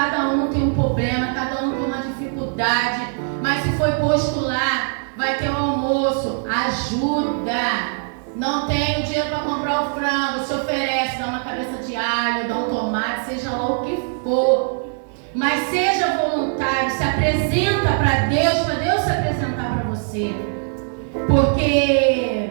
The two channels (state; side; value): silent; left; 58 dB below the other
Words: um tem um problema, cada um tem uma dificuldade. Mas se foi posto lá, vai ter o almoço, ajuda. Não tem o dinheiro para comprar o frango, se oferece, dá uma cabeça de alho, dá um tomate, seja lá o que for. Mas seja voluntário, se apresenta para Deus se apresentar para você.